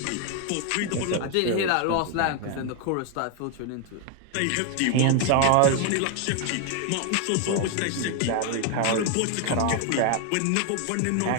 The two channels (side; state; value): both; different; correlation 0.01